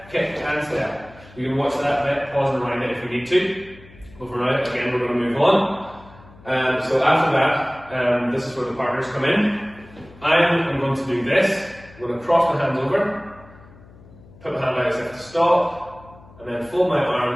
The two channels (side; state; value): left; noise; hum, 23 dB below the sound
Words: kick and step. You can watch that bit, pause and rewind it if we need to. But for now, again, we're going to move on. So after that, this is where the partners come in. I'm going to do this. I'm going to cross my hands over, put my hand out as if to stop, and then fold my